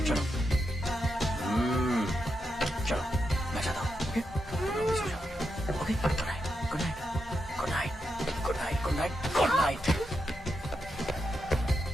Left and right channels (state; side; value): normal; both; correlation 0.85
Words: चलो चलो मैं जाता हूँ। ओके सो जाओ। Okay good night good night good night good night good night good night.